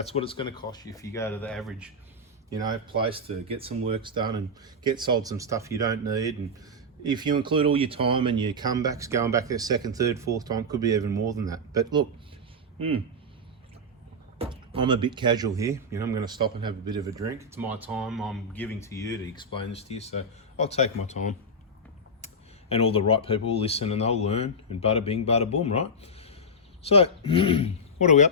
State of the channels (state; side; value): normal; both; correlation -0.06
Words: what it's going to cost you if you go to the average, you know, place to get some works done and get sold some stuff you don't need. And if you include all your time and your comebacks, going back there second, third, fourth time, could be even more than that. But look, I'm a bit casual here, you know, I'm going to stop and have a bit of a drink. It's my time I'm giving to you to explain this to you, so I'll take my time. And all the right people will listen and they'll learn, and bada bing, bada boom, right? So, what are we